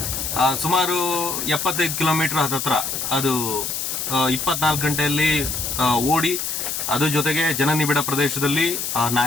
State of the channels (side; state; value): left; noise; hiss, 3 dB below the sound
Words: ಸುಮಾರು 75 ಕಿಲೋಮೀಟರ್ ಹತ್ತತ್ರ ಅದು 24 ಗಂಟೆಯಲ್ಲಿ ಓಡಿ, ಅದ್ರ ಜೊತೆಗೆ ಜನನಿಬಿಡ ಪ್ರದೇಶದಲ್ಲಿ